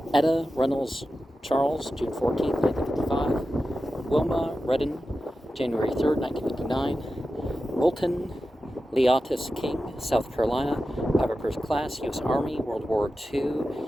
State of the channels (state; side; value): normal; both; correlation 0.92